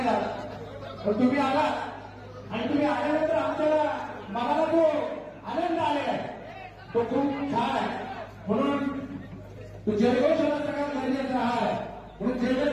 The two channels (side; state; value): both; identical; correlation 1.00